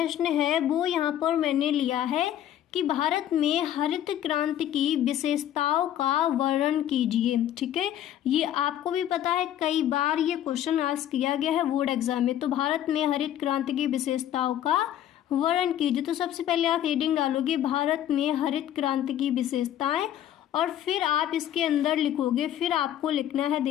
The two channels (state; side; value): quieter; right; 11.3 dB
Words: है वो यहाँ पर मैंने लिया है कि भारत में हरित क्रांति की विशेषताओं का वर्णन कीजिए, ठीक है। ये आपको भी पता है, कई बार ये क्वेश्चन आस्क किया गया है बोर्ड एग्जाम में। तो भारत में हरित क्रांति की विशेषताओं का वर्णन कीजिए। तो सबसे पहले आप हेडिंग डालोगे भारत में हरित क्रांति की विशेषताएं, और फिर आप इसके अंदर लिखोगे, फिर आपको लिखना है